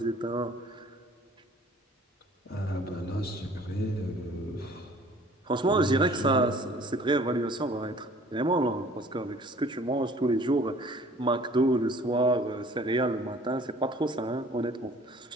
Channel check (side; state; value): both; normal; correlation 0.52